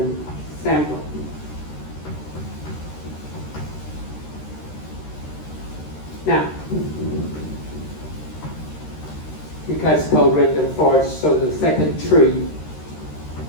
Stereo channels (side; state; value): right; late; 13 ms